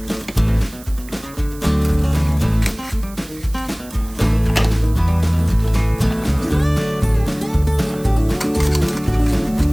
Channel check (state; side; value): noise; right; hiss, 20 dB below the sound